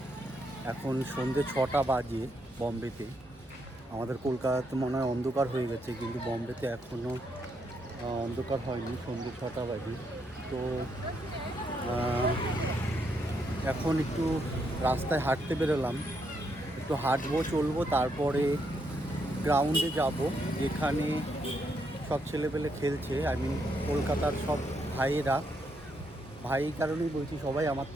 এখন সন্ধ্যে 6টা বাজে বম্বেতে। আমাদের কলকাতাতে মনে হয় অন্ধকার হয়ে গেছে, কিন্তু বম্বেতে এখনও অন্ধকার হয়নি, সন্ধ্যে 6টা বাজে। তো এখন একটু রাস্তায় হাঁটতে বেরোলাম, একটু হাঁটবো চলবো, তারপরে গ্রাউন্ডে যাব যেখানে সব ছেলেপেলে খেলছে। আমি কলকাতার সব ভাই কারণেই বলছি, সবাই আমার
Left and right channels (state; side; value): normal; both; correlation 0.78